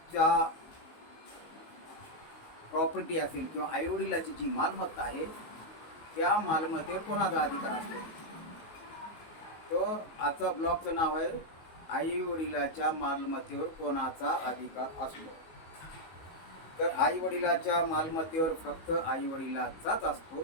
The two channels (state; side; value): late; right; 19 ms